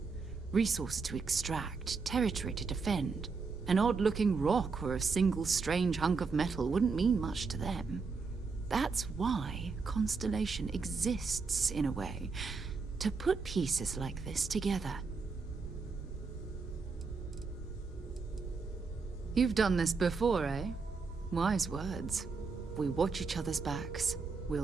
resources to extract, territory to defend. An odd-looking rock or a single strange hunk of metal wouldn't mean much to them. That's why Constellation exists, in a way, to put pieces like this together. You've done this before, eh? Wise words. We watch each other's backs,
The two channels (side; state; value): left; quieter; 4.7 dB